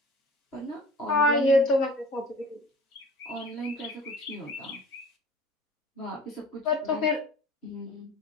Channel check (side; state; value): both; normal; correlation 0.44